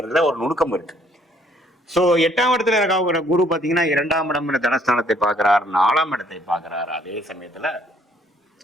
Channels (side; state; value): both; normal; correlation 0.64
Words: ஒரு நுணுக்கம் இருக்கு. சோ 8ஆம் இடத்துல இருக்க குரு பாத்தீங்கன்னா 2ஆம் இடம் தனஸ்தானத்தை பார்க்கிறார், 4ஆம் இடத்தை பார்க்கிறார், அதே சமயத்துல